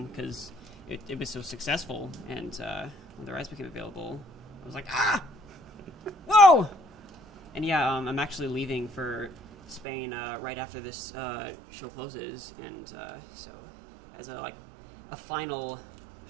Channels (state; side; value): drops out; left; at 9.9 s